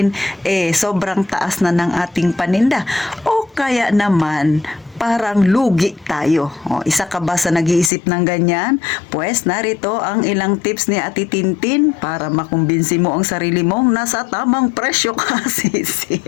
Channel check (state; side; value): drops out; right; at 7.9 s